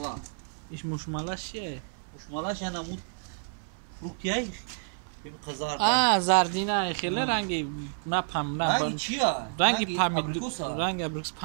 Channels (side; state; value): left; silent; 58 dB below the other